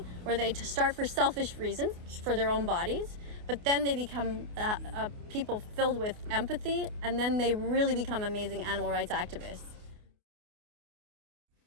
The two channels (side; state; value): left; late; 28 ms